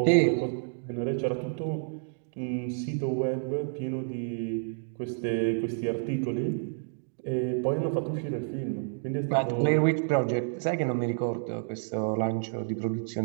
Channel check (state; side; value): silent; left; digital silence